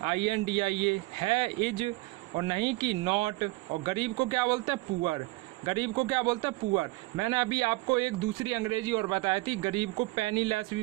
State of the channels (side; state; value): left; quieter; 21.6 dB